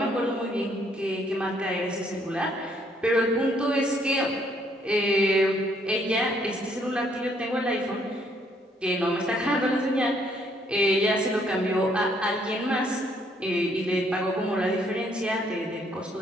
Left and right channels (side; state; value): both; normal; correlation 0.68